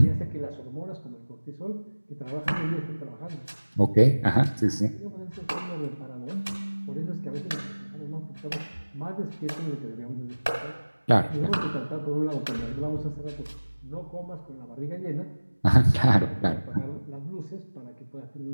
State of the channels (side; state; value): both; inverted; correlation -1.00